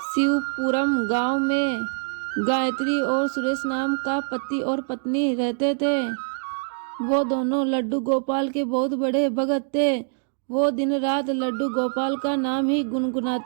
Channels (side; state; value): left; silent; digital silence